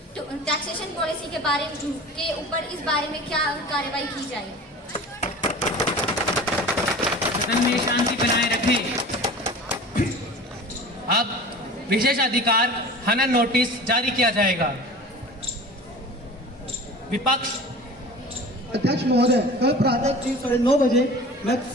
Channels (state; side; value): normal; both; correlation 0.38